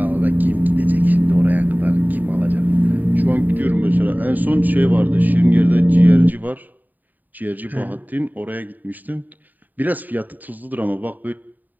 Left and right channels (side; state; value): left; late; 0.085 ms